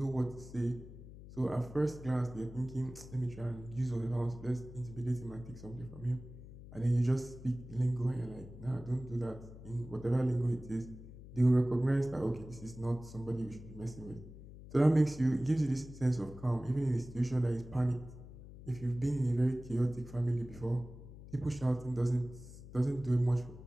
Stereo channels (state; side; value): noise; left; hum, 15 dB below the sound